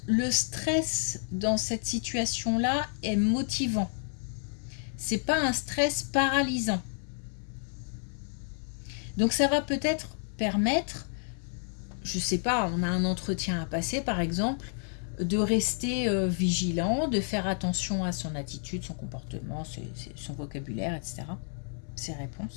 le stress dans cette situation-là est motivant. C'est pas un stress paralysant. Donc ça va peut-être permettre, je sais pas, on a un entretien à passer par exemple, de rester vigilant, de faire attention à son attitude, son comportement, son vocabulaire, etc. Ses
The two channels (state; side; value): silent; right; 58 dB below the other